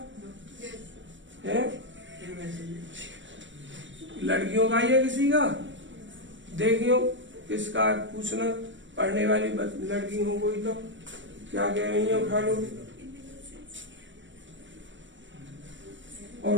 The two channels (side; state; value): left; late; 0.55 ms